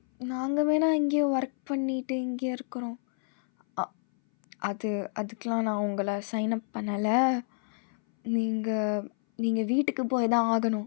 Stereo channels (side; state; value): right; silent; 59 dB below the other